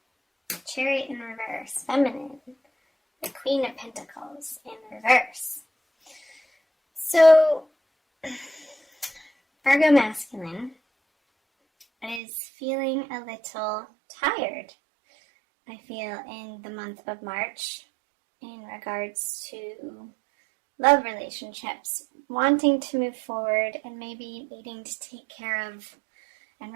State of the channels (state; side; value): drops out; left; at 12.2 s